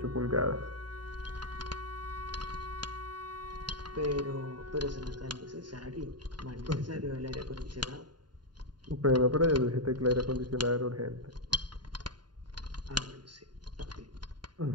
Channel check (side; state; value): left; late; 0.71 ms